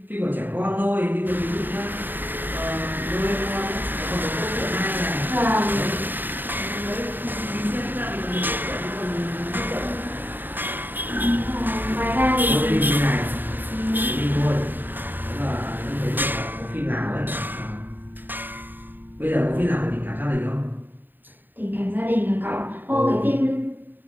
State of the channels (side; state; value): left; late; 0.091 ms